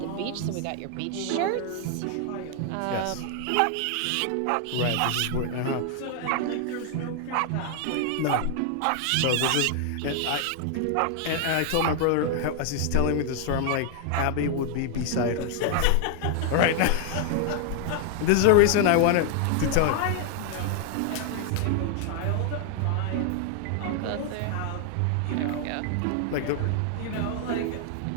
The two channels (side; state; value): both; different; correlation 0.00